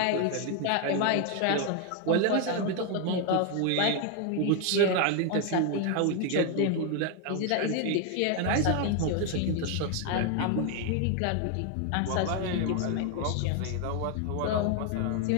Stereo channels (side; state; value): both; different; correlation 0.01